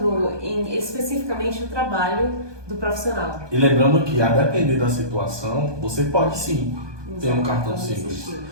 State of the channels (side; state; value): left; late; 1.2 ms